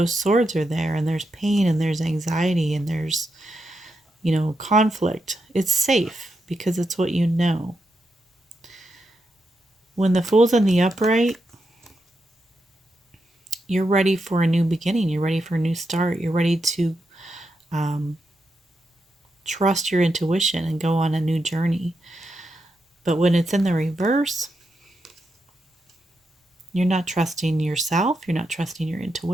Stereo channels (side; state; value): both; normal; correlation 0.84